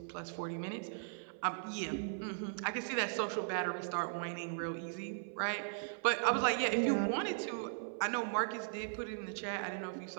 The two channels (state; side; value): silent; left; 52 dB below the other